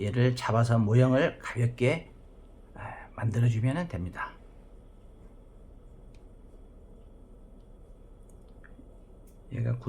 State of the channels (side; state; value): both; identical; correlation 1.00